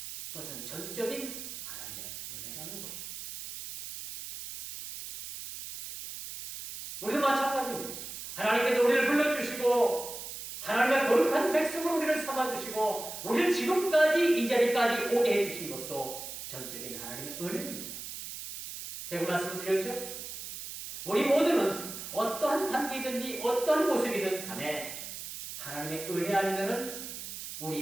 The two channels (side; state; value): right; noise; hiss, 9 dB below the sound